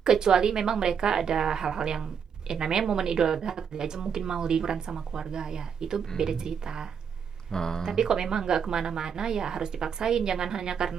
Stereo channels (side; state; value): left; quieter; 7.1 dB